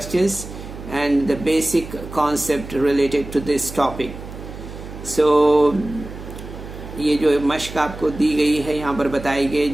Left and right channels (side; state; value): right; noise; hum, 12 dB below the sound